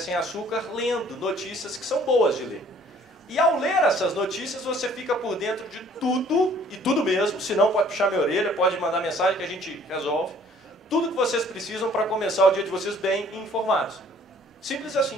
açúcar, lendo notícias que são boas de ler. E ao ler essas notícias, você fica por dentro de tudo, e tudo mesmo, se não pode puxar minha orelha, pode mandar mensagem que a gente resolve. Tudo que vocês precisam para começar o dia de vocês bem informados. Simples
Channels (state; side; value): normal; both; correlation 0.57